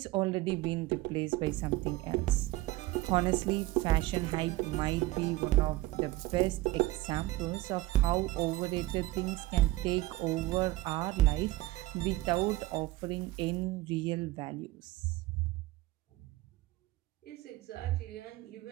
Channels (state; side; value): quieter; left; 18.2 dB